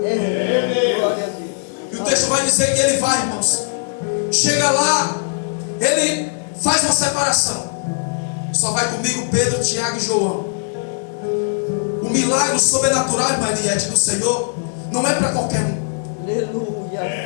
E o texto vai dizer que ele vai, irmãos. Chega lá, ele faz uma separação. Só vai comigo Pedro, Tiago e João. O milagre sobrenatural, irmã Eliette, do Senhor não é para qualquer um.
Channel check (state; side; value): silent; right; digital silence